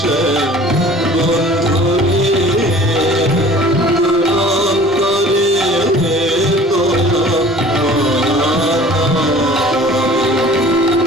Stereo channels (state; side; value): normal; both; correlation 0.47